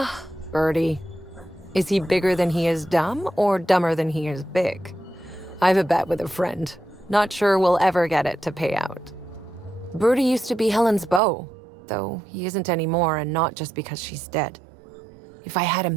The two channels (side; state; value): left; drops out; at 11.2 s